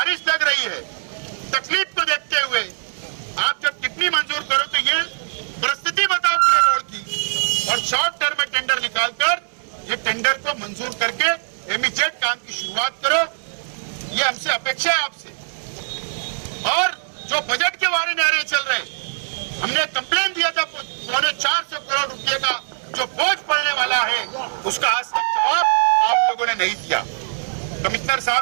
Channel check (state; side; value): silent; left; digital silence